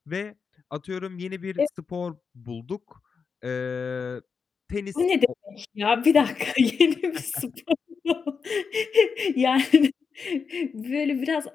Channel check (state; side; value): quieter; right; 5.6 dB